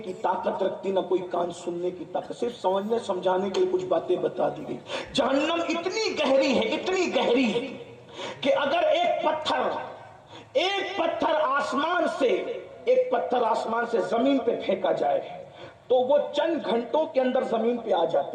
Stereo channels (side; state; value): both; identical; correlation 1.00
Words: طاقت رکھتی, نہ کوئی کان سننے کی طاقت. صرف سمجھنے سمجھانے کے لیے کچھ باتیں بتا دی گئی. جہنم اتنی گہری ہے, اتنی گہری ہے کہ اگر ایک پتھر آسمان سے زمین پہ پھینکا جائے تو وہ چند گھنٹوں کے اندر زمین پہ آ